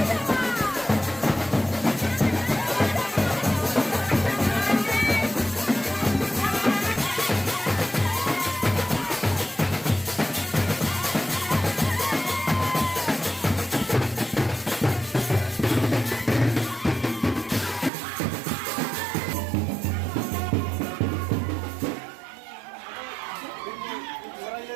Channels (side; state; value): left; drops out; at 17.9 s